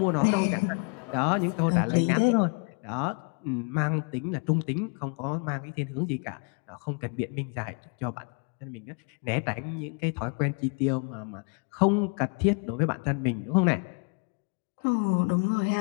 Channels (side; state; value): right; quieter; 38.2 dB